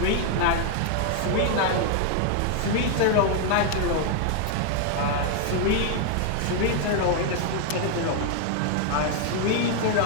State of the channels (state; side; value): different; both; correlation 0.00